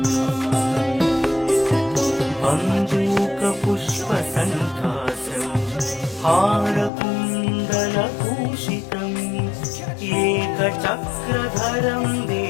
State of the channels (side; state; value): right; drops out; at 6.9 s